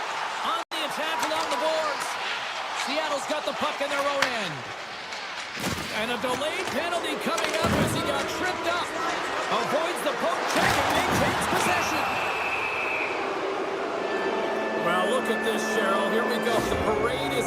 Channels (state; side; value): identical; both; correlation 1.00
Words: On the attack along the boards. Seattle's got the puck in their own end. And a delayed penalty coming up as he got tripped up. Avoids the poke check and maintains possession. Well, look at this, Cheryl. Here we go. The parade